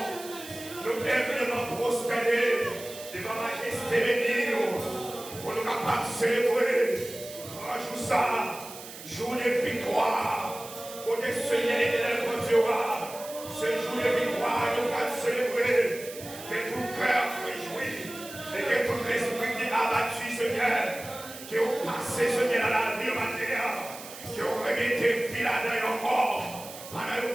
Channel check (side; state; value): right; noise; hiss, 14 dB below the sound